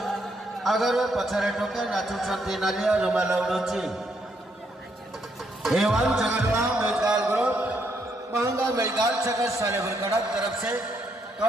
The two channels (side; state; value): both; normal; correlation 0.75